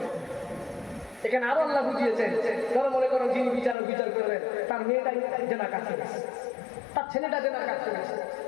এখানে আরো আল্লাহ বুঝিয়েছেন, ধরো মনে করো যিনি বিচারক বিচার করবেন, তার মেয়েটাই জেনার কাজ করেছে, তার ছেলেটা জেনার কাজ করেছে,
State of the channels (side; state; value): right; drops out; at 3.8 s